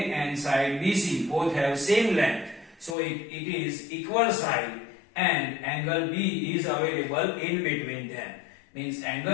and side BC both have same length. So it is equal side and angle B is available in between them. Means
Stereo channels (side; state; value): right; drops out; at 3.0 s